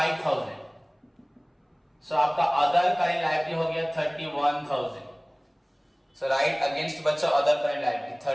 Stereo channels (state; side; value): identical; both; correlation 1.00